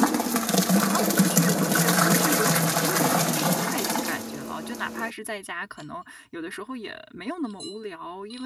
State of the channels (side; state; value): both; identical; correlation 1.00